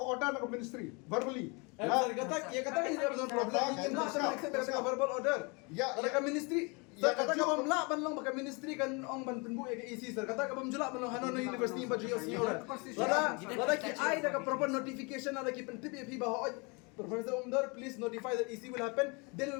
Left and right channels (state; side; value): quieter; right; 30.5 dB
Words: order na ka ministry verbally. Sir, kata ini ada problem ngin na sir accept ka verbal order. Ya, Ada ka ministry. Sir, kata ka bamla ban lang baka ministry kan ong ban penbu ya ke EC sir. Kata ka bamjula ban lang hanon na university ba jiyo senior. Lada ki ai da ka proper notification ada ki pentip fi ba Professor Umdar, please notify that EC will happen. Then